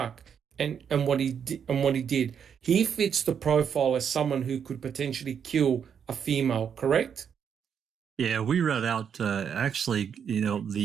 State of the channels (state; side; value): quieter; left; 7.6 dB